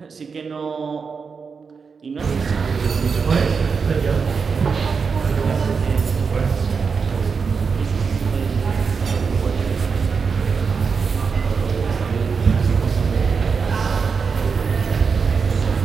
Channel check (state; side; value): quieter; left; 5.5 dB